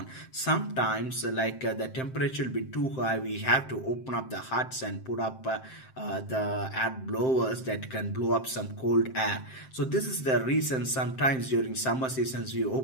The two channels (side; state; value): right; late; 7.7 ms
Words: Sometimes the temperature will be too high, we have to open up the huts and put up the air blowers that can blow up some cold air. So this is the reason sometimes during summer seasons we